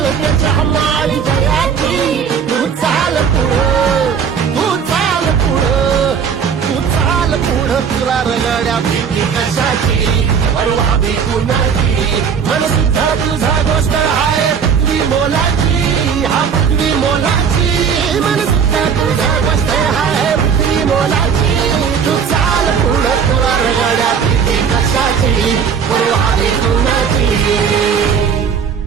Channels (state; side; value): quieter; left; 6.9 dB